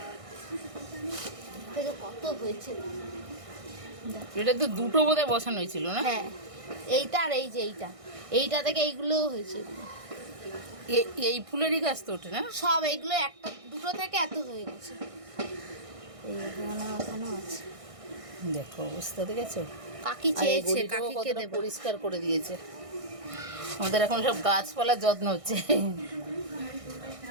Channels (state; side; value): late; left; 1.6 ms